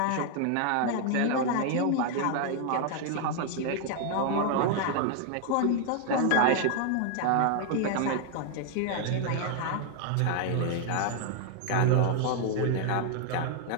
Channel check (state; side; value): different; both; correlation 0.00